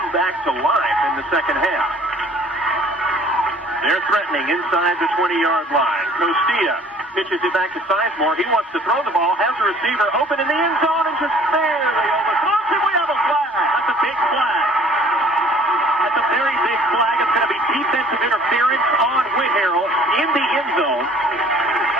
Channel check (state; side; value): normal; both; correlation 0.53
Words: back to life in the second half. They're threatening inside the 20-yard line. Costilla pitches it back to Sizemore. He wants to throw the ball, has a receiver open in the end zone, and just barely overthrows him. We have a flag. That's a big flag. That's a very big flag. It's going to be defensive interference on Whitharral in the end zone.